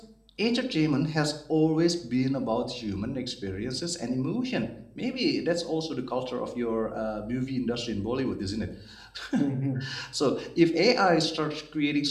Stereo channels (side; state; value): both; identical; correlation 1.00